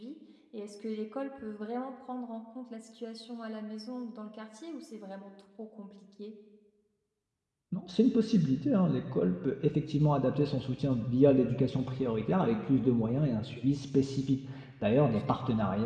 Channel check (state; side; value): identical; both; correlation 1.00